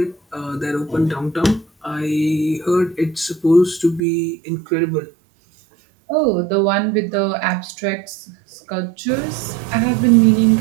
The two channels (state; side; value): drops out; left; at 4.0 s